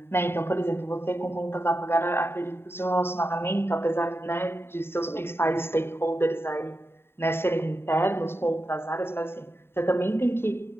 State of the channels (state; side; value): late; right; 0.11 ms